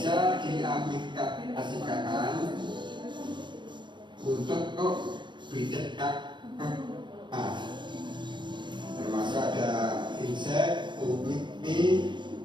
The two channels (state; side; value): late; left; 0.22 ms